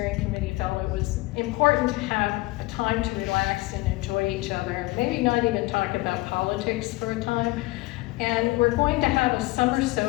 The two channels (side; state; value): right; quieter; 21.0 dB